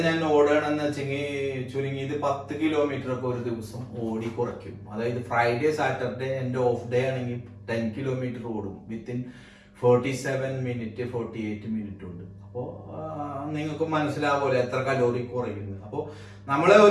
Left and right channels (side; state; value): both; identical; correlation 1.00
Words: ഞാൻ ഓടുകയാണെന്ന് വെച്ചെങ്കിൽ ചുരുങ്ങിയത് 10 കിലോമീറ്റർ ഒക്കെ ഒരു ദിവസം ഓടി കുറയ്ക്കും. അതായത് ഫ്രൈഡേ സാറ്റർഡേ എന്റെ ഓഫ് ഡേ ആണെങ്കിൽ 10 കിലോമീറ്റർ ഓടും വിത്തിൻ 47 മിനിറ്റ് 48 മിനിറ്റ് ഉണ്ട്. അപ്പോ നിങ്ങൾക്ക് മനസ്സിലാവുമല്ലോ എത്ര കലോറി കുറയുന്നത്. അപ്പോ നമ്മളെ